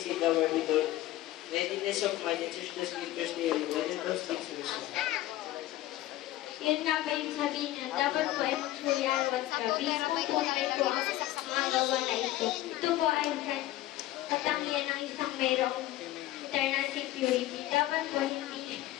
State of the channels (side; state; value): right; quieter; 15.3 dB